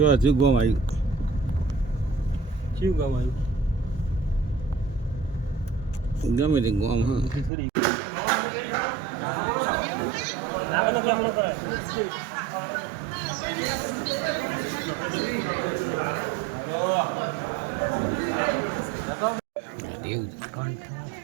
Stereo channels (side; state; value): left; drops out; at 7.5 s